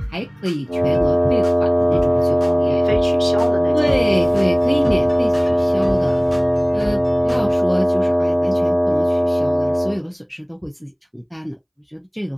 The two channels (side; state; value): both; identical; correlation 1.00